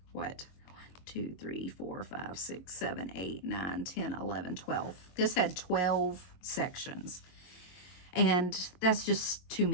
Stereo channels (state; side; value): late; right; 22 ms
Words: what? 2, 3, 4, 5, 6, 7, 8, 9, 10, 11, 12. This had 12 sections. And that's just too